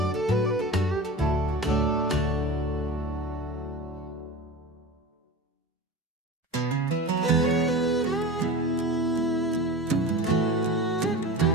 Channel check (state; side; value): normal; both; correlation 0.32